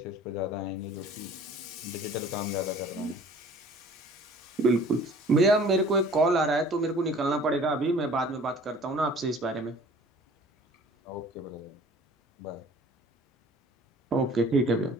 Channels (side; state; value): both; normal; correlation 0.49